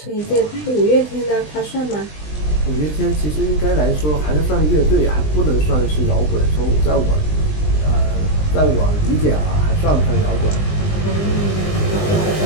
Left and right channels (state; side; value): late; right; 20 ms